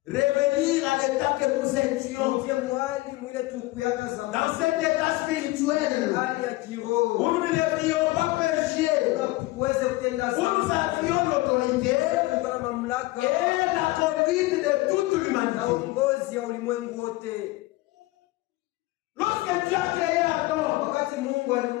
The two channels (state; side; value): quieter; right; 20.2 dB